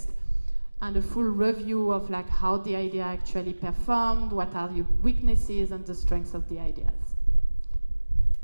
and a full review of like how the idea actually performed, what are your weaknesses and the strengths of the ideas.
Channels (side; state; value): both; inverted; correlation -1.00